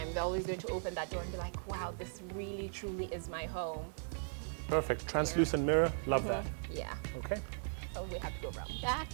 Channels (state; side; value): silent; left; digital silence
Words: They're always going to open that door and be like, wow, this really truly is my home. Perfect. Translucent mirror. Love that. Yeah. Okay. So we have to go around back